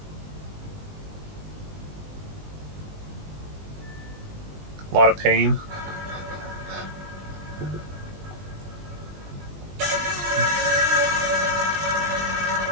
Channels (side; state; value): left; late; 20 ms